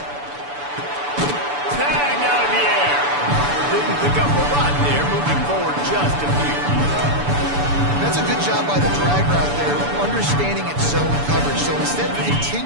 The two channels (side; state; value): left; late; 6.9 ms